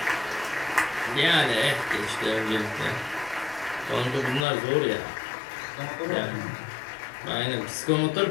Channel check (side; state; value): right; drops out; at 4.5 s